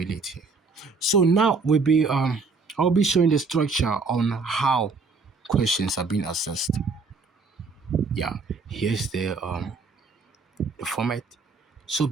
So now I'll be showing the structure on how questions are being assessed. Yeah, here's the format. So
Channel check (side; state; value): left; quieter; 4.3 dB